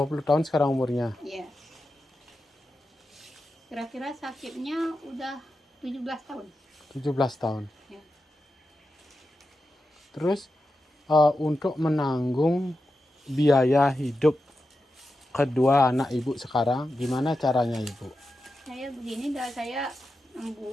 tahun sekarang umurnya? Iya. Kira-kira sakitnya udah 17 tahun. 17 tahun. Ya. Terus untuk menanggung biaya hidup kedua anak ibu sekarang, gimana caranya ibu? Saya begini dah, saya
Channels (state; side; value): normal; both; correlation 0.90